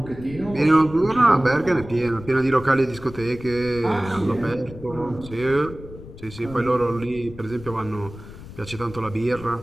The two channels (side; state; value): left; noise; rumble, 15 dB below the sound